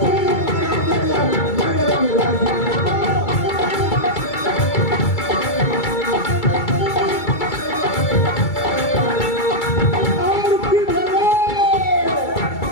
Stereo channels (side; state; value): right; late; 2.3 ms